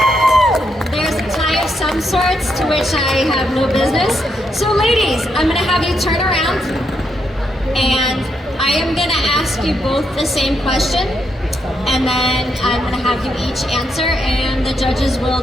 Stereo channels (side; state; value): both; normal; correlation 0.79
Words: There's a tie of some sorts to which I have no business. So ladies, I'm gonna have you turn around and I am gonna ask you both the same question, and then I'm gonna have you each answer and the judges will